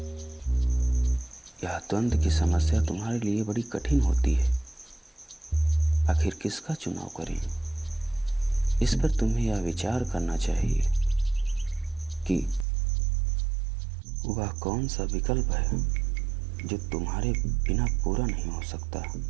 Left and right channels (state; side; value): drops out; left; at 12.7 s